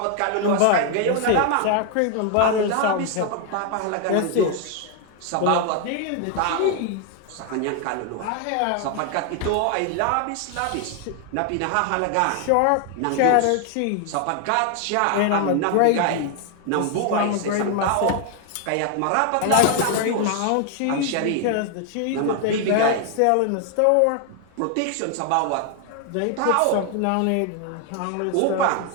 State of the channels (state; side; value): different; both; correlation 0.00